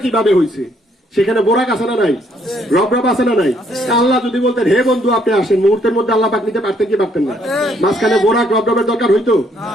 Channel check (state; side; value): normal; both; correlation 0.68